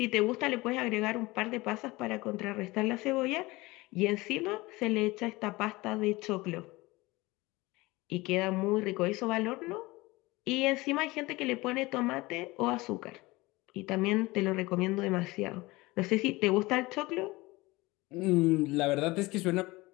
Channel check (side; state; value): right; quieter; 21.5 dB